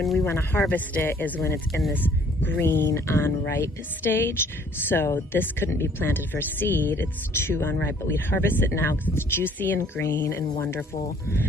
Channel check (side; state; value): both; normal; correlation 0.59